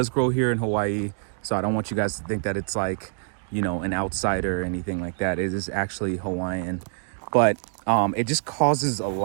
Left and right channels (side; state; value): left; silent; 61 dB below the other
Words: grow here in Hawaii. So I don't want you guys to think that it's like, you know, an outsider or anything like that. It is actually Hawaiian. But it just causes a